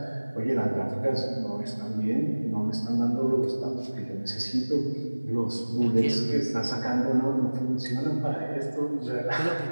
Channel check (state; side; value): inverted; both; correlation -1.00